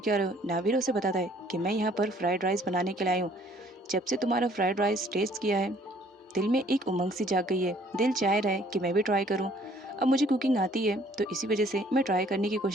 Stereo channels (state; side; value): normal; both; correlation 0.59